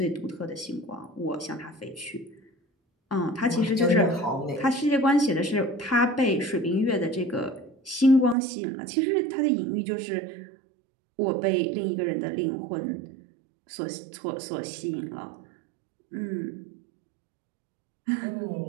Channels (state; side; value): drops out; left; at 8.3 s